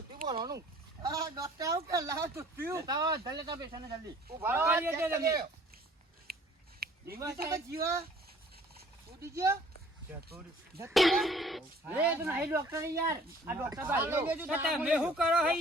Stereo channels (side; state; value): both; normal; correlation 0.54